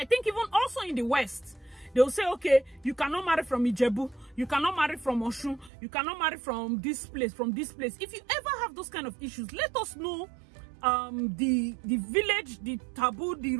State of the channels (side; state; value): left; drops out; at 5.7 s